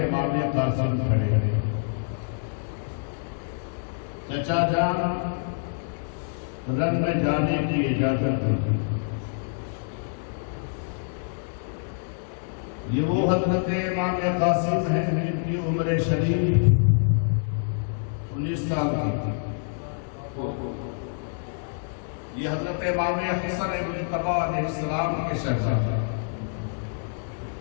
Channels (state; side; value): silent; right; 61 dB below the other